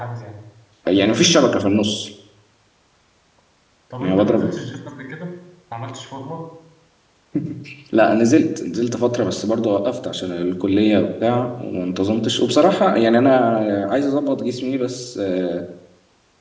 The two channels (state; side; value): identical; both; correlation 1.00